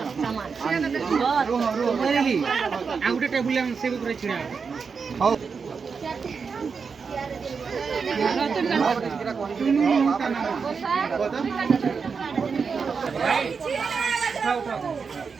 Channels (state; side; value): quieter; left; 5.5 dB